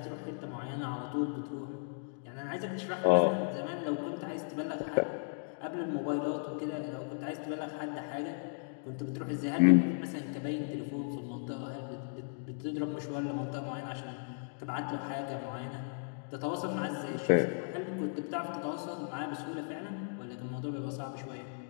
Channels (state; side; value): silent; right; digital silence